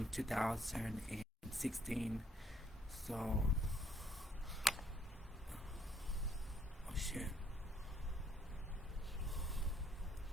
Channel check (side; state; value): both; normal; correlation 0.68